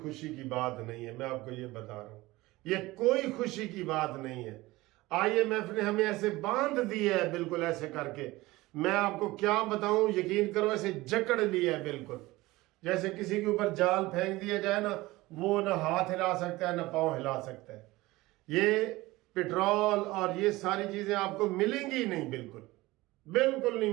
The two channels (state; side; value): quieter; left; 19.7 dB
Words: خوشی کی بات نہیں ہے، میں آپ کو یہ بتا رہا ہوں، یہ کوئی خوشی کی بات نہیں ہے۔ آئی ایم ایف نے ہمیں ایسے باندھ دیا ہے، بالکل ایسے کر کے، میں آپ کو کیا بتاؤں، یقین کرو ایسے جکڑ لیا ہے بالکل، جیسے کسی کے اوپر جال پھینک دیا جائے نا، وہ نہ ہاتھ ہلا سکتا ہے نہ پاؤں ہلا سکتا ہے۔ یہ پیٹرول اور یہ ساری چیزیں آپ کو ملیں گی نہیں، بالکل نہیں